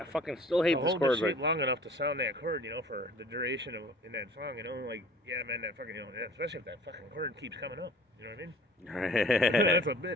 fucking still hate this chord. Hold long enough to sound that chord, you know, for the duration of in that song, you know, like yeah, man, that fucking, you know, especially if that fucking chord keeps coming up, you know what I mean? That's a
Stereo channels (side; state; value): both; normal; correlation 0.48